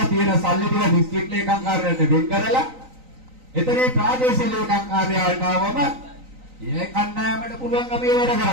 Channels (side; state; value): left; late; 3.9 ms